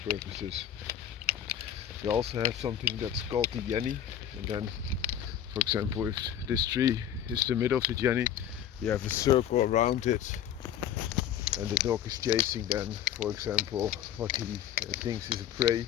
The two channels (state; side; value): quieter; right; 10.0 dB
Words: purposes. You also have something that's called the jenny, and then, for example, if this tree is the middle of the jenny, you have a circle around it, and the dog is chasing then, for example, what he thinks is a prey